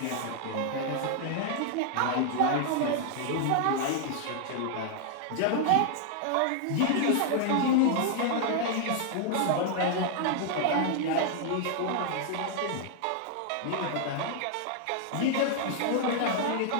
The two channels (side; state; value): both; different; correlation 0.00